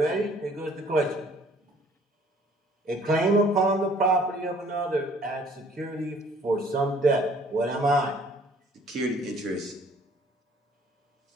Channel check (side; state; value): both; normal; correlation 0.57